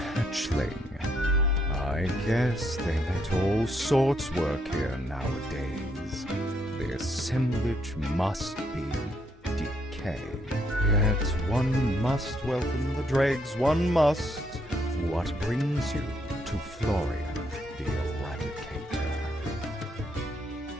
I guess they let all sorts work here nowadays. The assemblage must be decay. Yet one must welcome the dregs, one must. What brings you to Florian the Eradicator?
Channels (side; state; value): both; normal; correlation 0.74